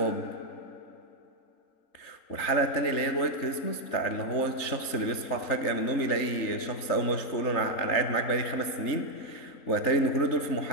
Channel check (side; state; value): right; late; 3.9 ms